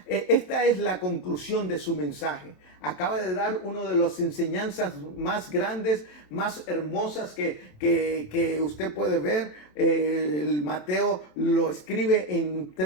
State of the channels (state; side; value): late; right; 27 ms